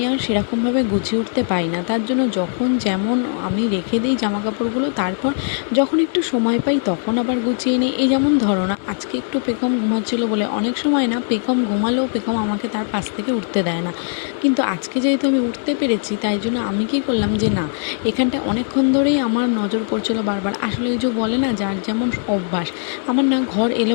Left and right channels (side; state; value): right; silent; 66 dB below the other